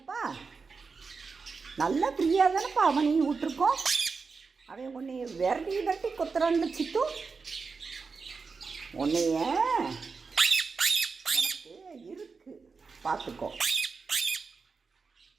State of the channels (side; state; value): left; quieter; 4.8 dB